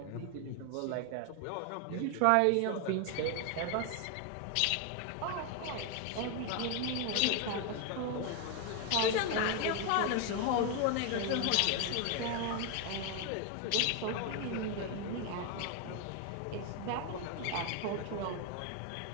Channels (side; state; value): both; different; correlation 0.01